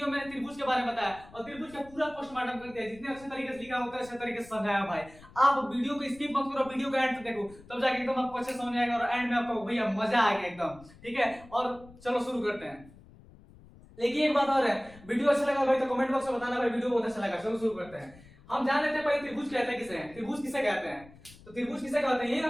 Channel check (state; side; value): noise; left; rumble, 22 dB below the sound